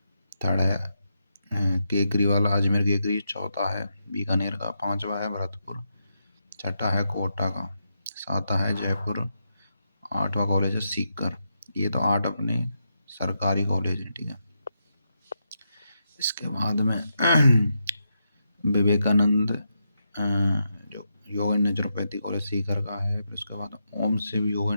Third है केकरी वाला अजमेर केकरी। चौथा है बीकानेर का। पांचवा है भरतपुर। छठा है कोटा का। सातवां है जयपुर। आठवां कॉलेज है सीकर। ये तो 8 अपने सरकारी कॉलेज हैं। ठीक है, इसके बाद में विवेकानंद जो योग एंड नेचुरोपैथी कॉलेज सीकर का है। फिर उसके बाद ओम शिव योग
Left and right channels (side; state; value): both; inverted; correlation -0.84